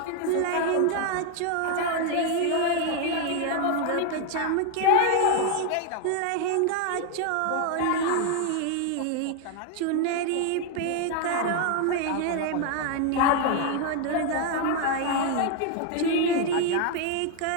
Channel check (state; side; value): different; both; correlation 0.01